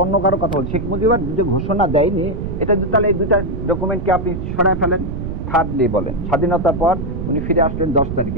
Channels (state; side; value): noise; right; rumble, 5 dB below the sound